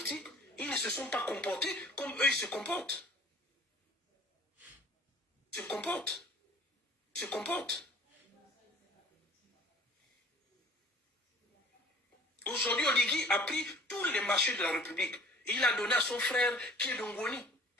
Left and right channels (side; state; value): both; normal; correlation 0.49